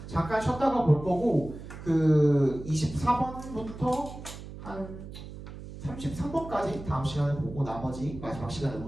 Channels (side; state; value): right; noise; hum, 12 dB below the sound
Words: 잠깐 쉬었다가 볼 거고, 그 24번부터 한 33번까지 다음 시간에 보고 나머지 마지막 시간에